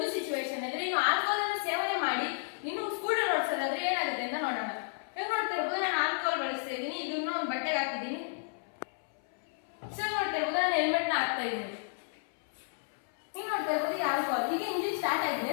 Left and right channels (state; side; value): silent; right; 56 dB below the other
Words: ಸಿಚುವೇಶನ್ ಅಂದ್ರೆ, ಇನ್ನು ಆಲ್ಕೋಹಾಲ್ ಅನ್ನು ಸೇವನೆ ಮಾಡಿ ಇನ್ನು ಸ್ಕೂಟರ್ ಓಡಿಸೋದಾದ್ರೆ ಏನಾಗುತ್ತೆ ಅಂತ ನೋಡೋಣ. ಈಗ ನೋಡ್ತಾ ಇರ್ಬೋದು, ನಾನು ಆಲ್ಕೋಹಾಲ್ ಬಳಸ್ತಾ ಇದ್ದೀನಿ. ಇದನ್ನ ಒಂದು ಬಟ್ಟೆಗೆ ಹಾಕಿದ್ದೀನಿ. ಸೊ ನೋಡ್ತಾ ಇರ್ಬೋದು, ನಾನು ಹೆಲ್ಮೆಟ್ ನ ಹಾಕ್ತಾ ಇದ್ದೀನಿ. ಈಗ ನೋಡ್ತಾ ಇರ್ಬೋದು, ಈ ಆಲ್ಕೋಹಾಲ್ ಈಗ ಇಂಜಿನ್ ಸ್ಟಾರ್ಟ್